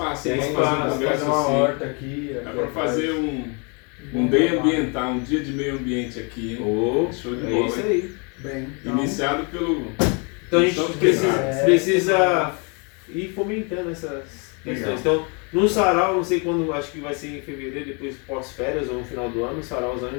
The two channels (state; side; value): quieter; right; 33.9 dB